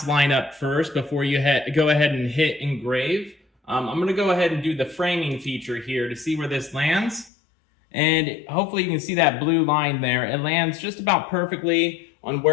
line up first before you go ahead and hit engrave. I'm going to go ahead and do the framing feature here to see where this lands. And hopefully you can see that blue line there. It lands just about perfectly on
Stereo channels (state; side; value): drops out; right; at 7.3 s